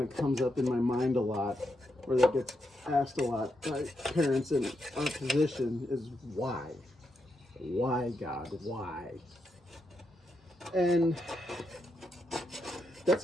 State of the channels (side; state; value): both; normal; correlation 0.83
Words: of comes up in my mind a lot, or that gets asked a lot by parents in our position, is why? Why, God? Why? And that's